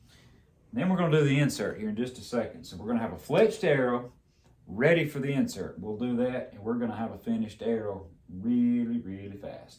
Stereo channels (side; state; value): both; identical; correlation 1.00